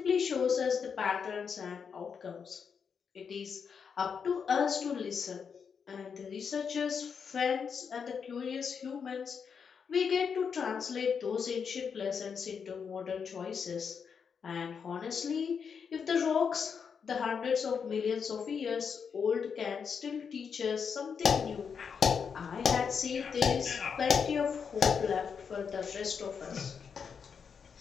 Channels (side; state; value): right; quieter; 6.4 dB